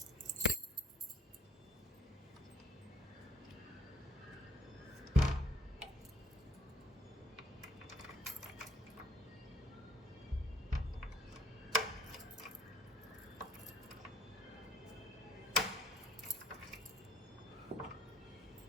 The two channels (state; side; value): normal; both; correlation 0.61